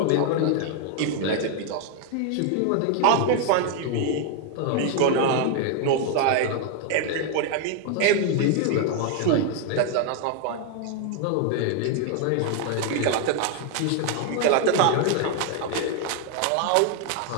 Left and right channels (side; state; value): both; different; correlation 0.00